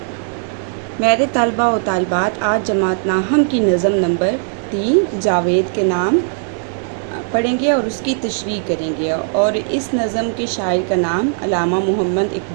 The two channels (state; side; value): silent; left; digital silence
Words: मेरे तलबा व तालिबात, आज जमात नाहम की नज़म नंबर 3 जावेद के नाम पढ़ेंगे और उसकी तशरीह करेंगे। और इस नज़म के शायर का नाम अल्लामा मोहम्मद